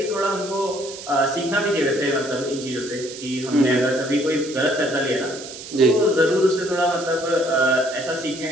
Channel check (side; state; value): right; noise; hiss, 13 dB below the sound